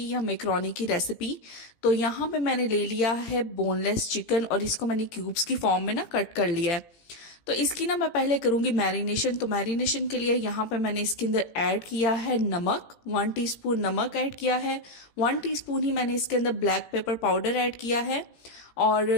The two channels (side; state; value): right; late; 17 ms